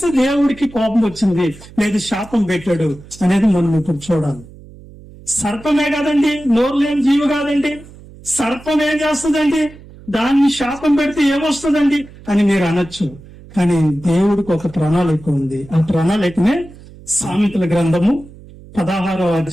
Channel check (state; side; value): noise; right; hum, 20 dB below the sound